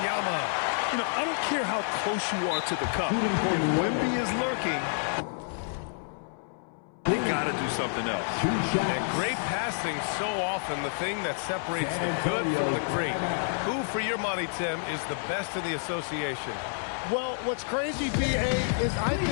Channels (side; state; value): right; silent; 59 dB below the other